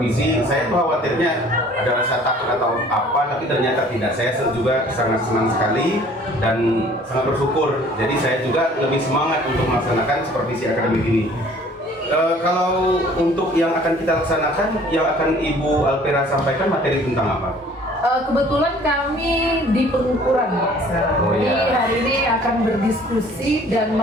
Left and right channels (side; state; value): both; normal; correlation 0.53